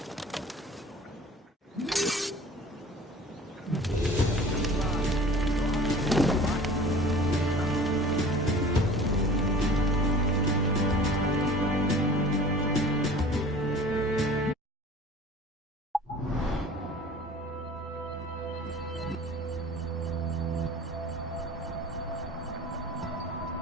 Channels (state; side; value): normal; both; correlation 0.44